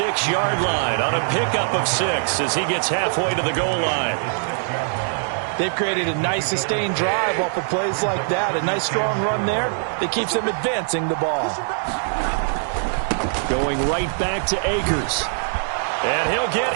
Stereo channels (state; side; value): silent; left; digital silence